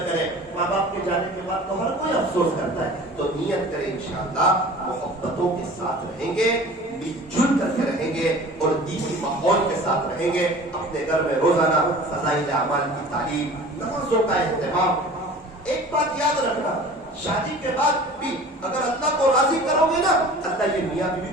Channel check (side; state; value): both; normal; correlation 0.42